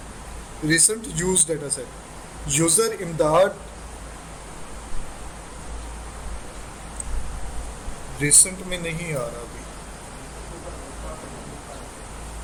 set, user इमदाद, रिसेंट में नहीं आ रहा अभी।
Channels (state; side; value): identical; both; correlation 1.00